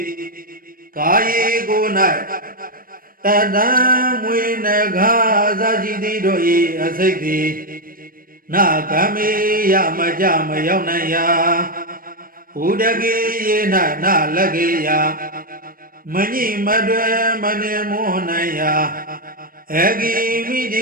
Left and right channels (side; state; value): left; late; 0.41 ms